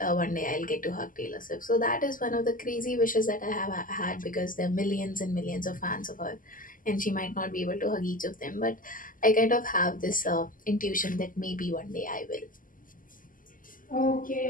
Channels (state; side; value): late; right; 0.40 ms